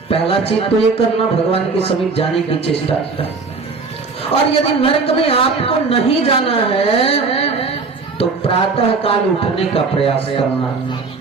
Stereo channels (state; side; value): quieter; left; 4.4 dB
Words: पहला चीज तो ये करना, भगवान के समीप जाने की चेष्टा। और यदि नरक में आपको नहीं जाना है तो प्रातः काल उठने का प्रयास करना।